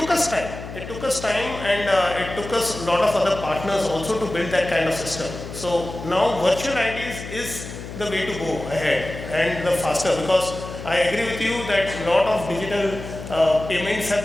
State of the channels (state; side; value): noise; left; hum, 11 dB below the sound